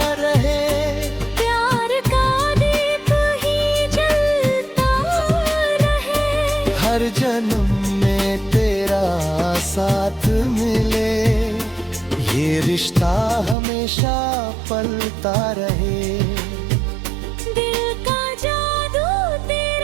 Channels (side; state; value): left; drops out; at 13.6 s